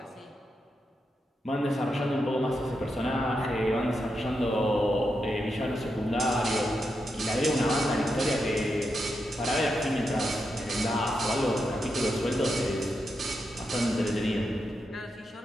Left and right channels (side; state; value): both; normal; correlation 0.85